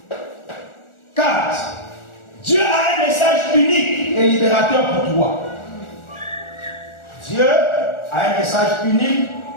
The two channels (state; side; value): late; right; 1.4 ms